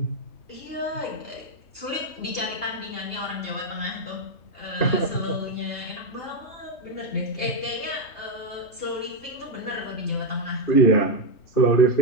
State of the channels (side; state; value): right; late; 3.3 ms